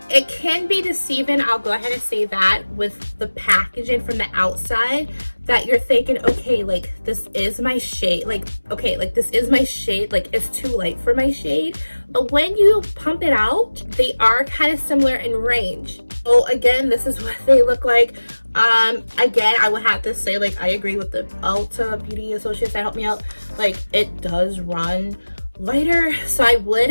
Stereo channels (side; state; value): both; inverted; correlation -1.00